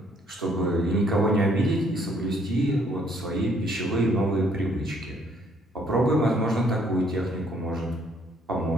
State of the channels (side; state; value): both; normal; correlation 0.65